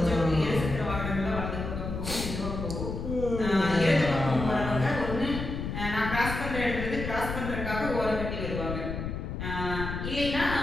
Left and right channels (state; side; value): noise; left; rumble, 5 dB below the sound